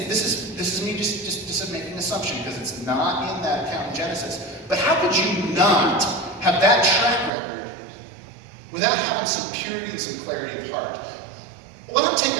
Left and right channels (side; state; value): left; drops out; at 7.3 s